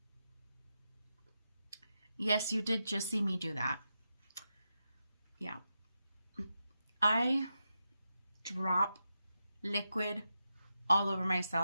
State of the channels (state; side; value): inverted; both; correlation -0.88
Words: Yes, you did just see me do that. Yeah. I drop liquid all over